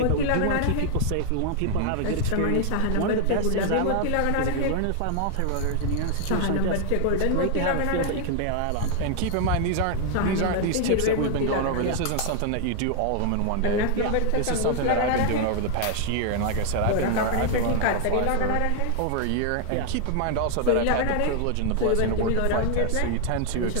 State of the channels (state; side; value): different; both; correlation 0.00